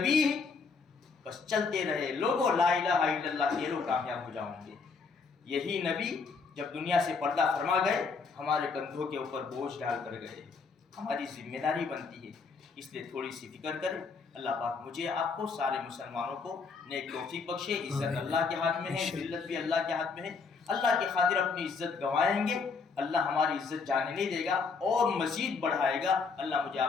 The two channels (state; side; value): quieter; right; 4.8 dB